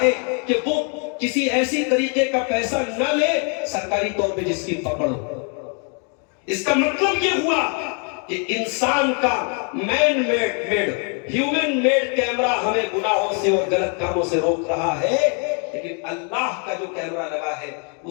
ہے کہ وہ کسی ایسی طریقے کا پیسہ نہ لے سرکاری طور پہ جس کی پکڑ ہو۔ اس کا مطلب یہ ہوا کہ انسان کا man made human made camera ہمیں گناہوں سے اور غلط کاموں سے روک رہا ہے، لیکن اللہ کا جو کیمرہ لگا ہے،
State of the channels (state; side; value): quieter; right; 38.6 dB